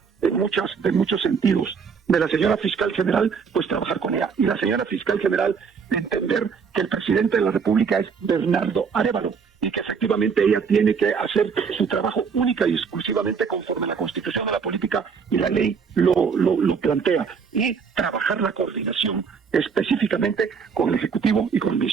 de muchos sentidos de la señora fiscal general, pues trabajar con ella. Y la señora fiscal general entender que el presidente de la República es Bernardo Arévalo y que efectivamente ella tiene que hacer su trabajo única y exclusivamente conforme la Constitución de la política y la ley lo plantea, y trabajar la coordinación específicamente con el Ejecutivo y con el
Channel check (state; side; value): quieter; left; 6.0 dB